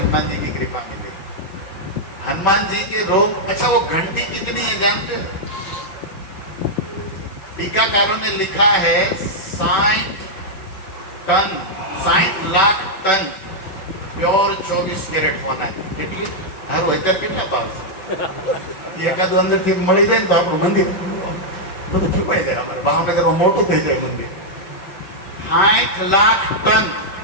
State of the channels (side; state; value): right; late; 5.3 ms